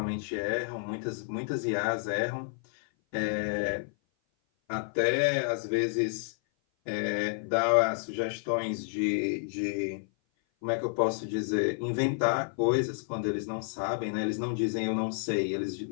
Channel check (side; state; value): right; silent; 56 dB below the other